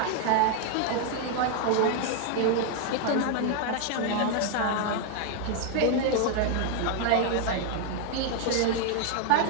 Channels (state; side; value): different; both; correlation 0.01